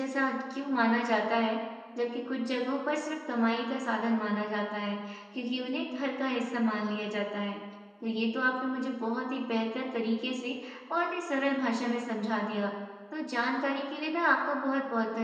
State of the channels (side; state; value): both; identical; correlation 1.00